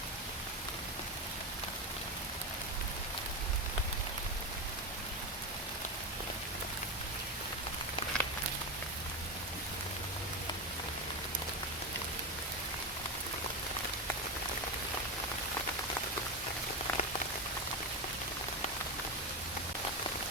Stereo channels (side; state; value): both; normal; correlation 0.15